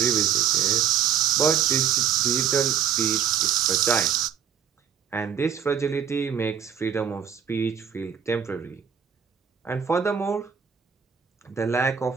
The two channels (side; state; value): left; quieter; 8.2 dB